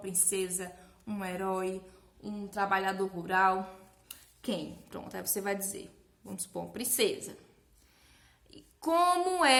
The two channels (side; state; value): both; identical; correlation 1.00